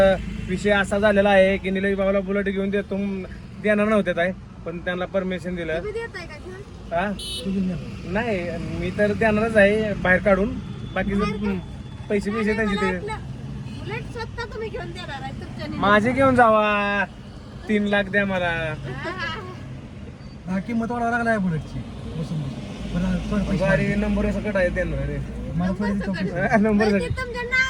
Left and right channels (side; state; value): both; identical; correlation 1.00